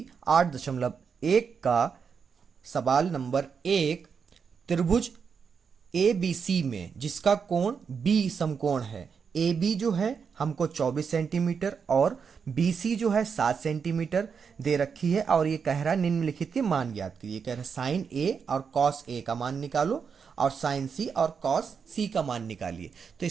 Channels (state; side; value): quieter; left; 6.2 dB